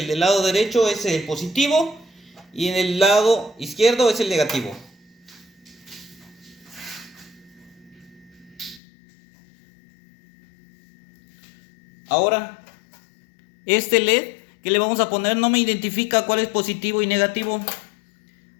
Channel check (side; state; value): right; drops out; at 8.8 s